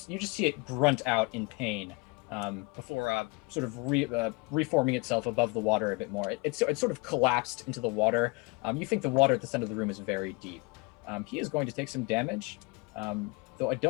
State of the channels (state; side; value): quieter; right; 28.6 dB